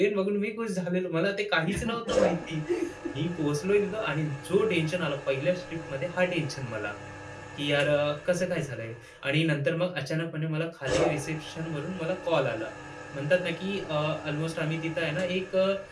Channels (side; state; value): both; identical; correlation 1.00